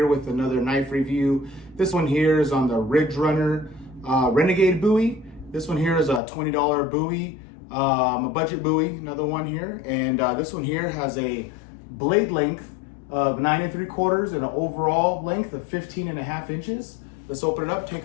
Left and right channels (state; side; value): drops out; right; at 6.2 s